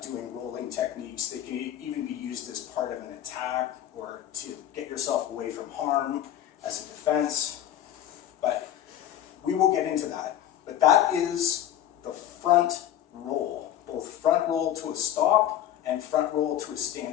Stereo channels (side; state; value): right; quieter; 11.6 dB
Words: doing rolling techniques. They can even be used as part of an attack or to get yourself away from harm as a defense. But we will get into that. But that is the front roll, both front roll to a stop and front roll to a